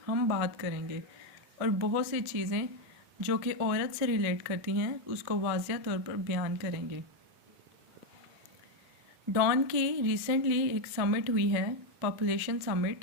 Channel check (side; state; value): left; late; 2.0 ms